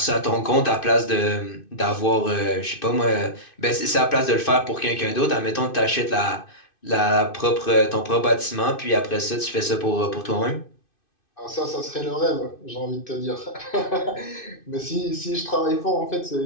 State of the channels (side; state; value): right; late; 2.6 ms